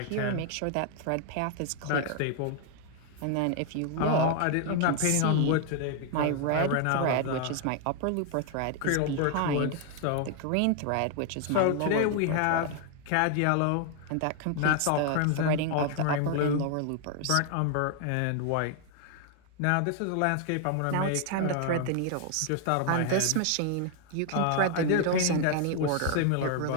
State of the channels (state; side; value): different; both; correlation 0.00